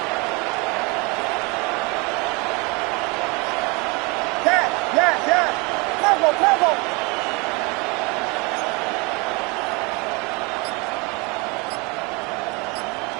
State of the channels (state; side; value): quieter; left; 28.4 dB